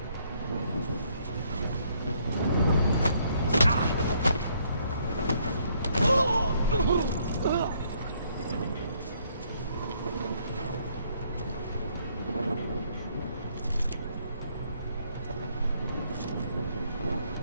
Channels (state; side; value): inverted; both; correlation -0.69